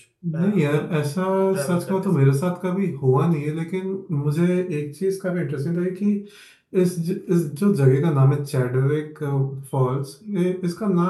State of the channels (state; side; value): identical; both; correlation 1.00